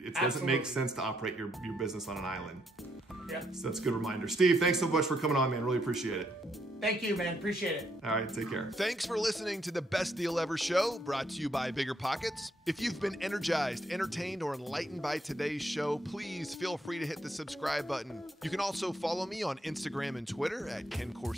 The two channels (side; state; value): both; normal; correlation 0.75